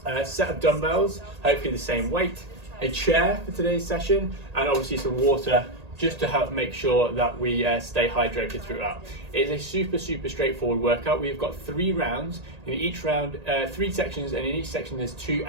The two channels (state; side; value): late; left; 1.8 ms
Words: a set of dumbbells, hopefully the same weight, a chair for today's session, and obviously some water, just to help make sure that we stay hydrated throughout. It is a super straightforward workout. We've got 3 rounds, in each round 3 sections, and in each section there's 2